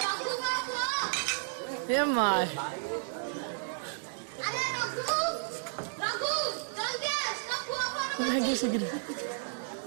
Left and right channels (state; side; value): silent; left; digital silence